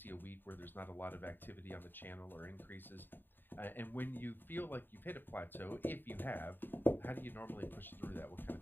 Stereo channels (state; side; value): late; right; 0.094 ms